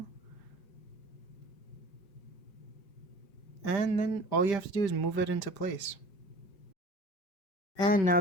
And then all you have to do is move it into place. And now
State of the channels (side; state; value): right; late; 5.0 ms